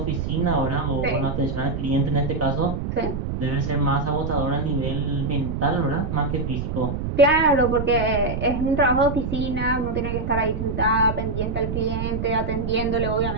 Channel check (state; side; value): noise; right; rumble, 3 dB below the sound